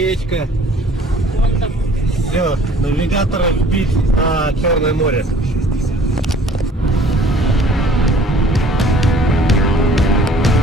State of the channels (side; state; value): both; normal; correlation 0.54